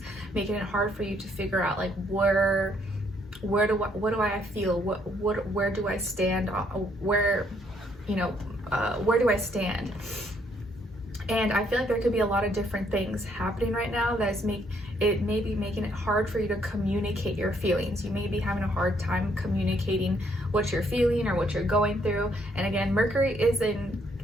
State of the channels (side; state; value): both; normal; correlation 0.69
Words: making it hard for you to figure out like what do I feel, where do I stand, where do I stand. And I feel like there could be a lot of different things happening right now that's maybe making it hard for you to communicate your feelings. You may be having a hard time communicating what you're feeling or what you're going through. And again, Mercury is in